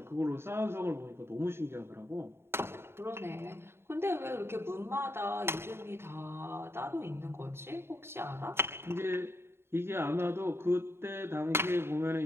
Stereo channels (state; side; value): late; left; 0.12 ms